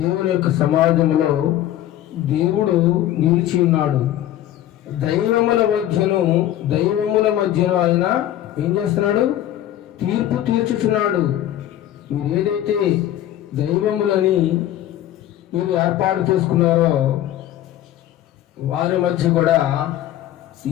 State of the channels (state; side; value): quieter; right; 12.7 dB